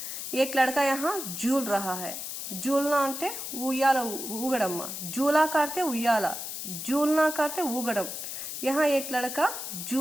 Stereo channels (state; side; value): noise; left; hiss, 6 dB below the sound